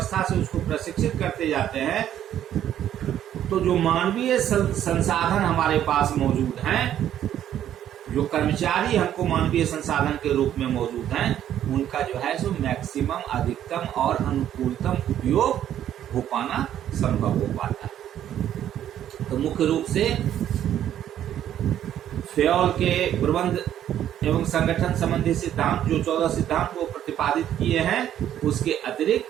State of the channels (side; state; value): left; quieter; 10.9 dB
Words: से उसको प्रशिक्षित करते जाते हैं, तो जो मानवीय संसाधन हमारे पास मौजूद हैं, जो कर्मचारी हमको मानवीय संसाधन के रूप में मौजूद हैं, उनका जो है सो मैक्सिमम, अधिकतम और अनुकूलतम उपयोग हो पाना संभव हो पाता है। तो मुख्य रूप से फेयोल के प्रबंध एवं संगठन संबंधी सिद्धांत, जो 14 सिद्धांत वो प्रतिपादित किए हैं, उसके